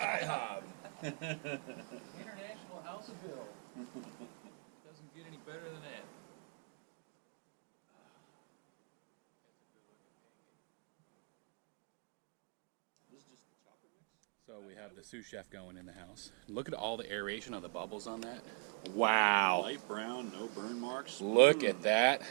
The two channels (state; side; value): quieter; left; 39.1 dB